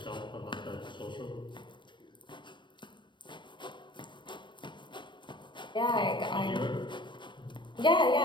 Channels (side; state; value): right; late; 0.23 ms